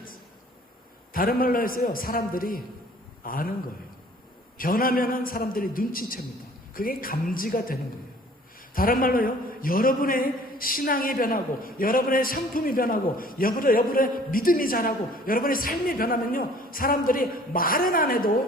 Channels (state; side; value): normal; both; correlation 0.53